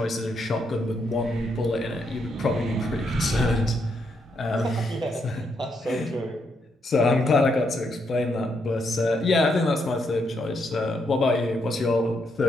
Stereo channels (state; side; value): normal; both; correlation 0.78